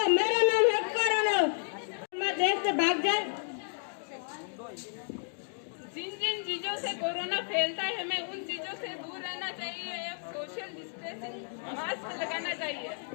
मेरा नाम है कोरोना। मैं देश से भाग जाए। जिन जिन चीजों से कोरोना फैलता है हमें उन चीजों से दूर रहना चाहिए। सोशल डिस्टेंसिंग, मास्क लगाना चाहिए।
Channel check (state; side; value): silent; right; 56 dB below the other